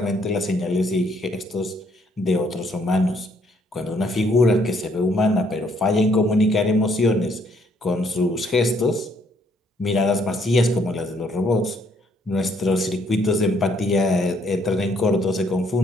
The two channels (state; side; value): normal; both; correlation 0.68